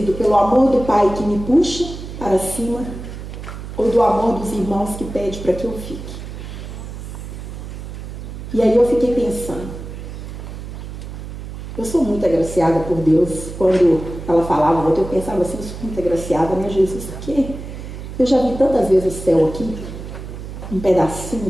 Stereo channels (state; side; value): noise; right; hum, 10 dB below the sound